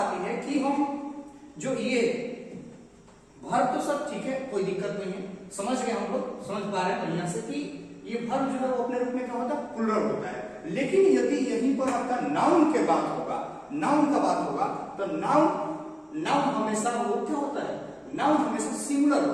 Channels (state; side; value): identical; both; correlation 1.00